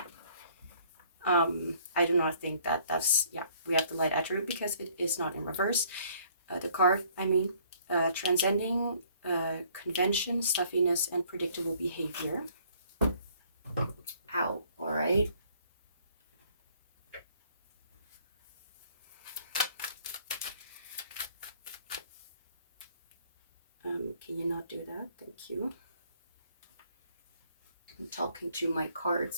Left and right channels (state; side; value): inverted; both; correlation -0.60